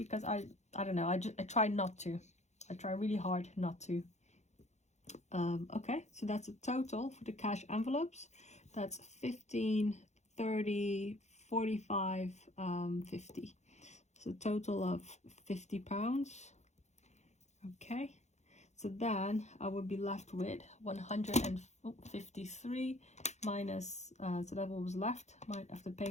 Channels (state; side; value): late; right; 0.33 ms